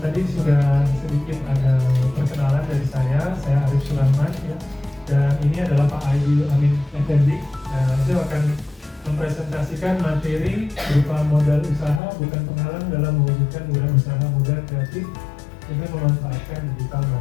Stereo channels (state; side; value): drops out; right; at 12.0 s